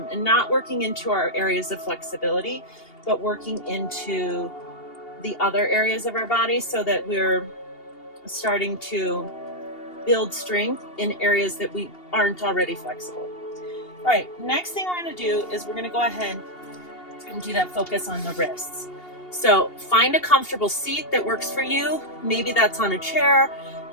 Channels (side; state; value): right; late; 2.8 ms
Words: and not working into our areas of flexibility, but working into the other areas of our body so that we're starting to build strength in areas that we aren't already flexible. All right, next thing we're going to do is we're going to go ahead and do that focus on the wrists. So find a comfortable seat that works for you. Maybe that's on a chair,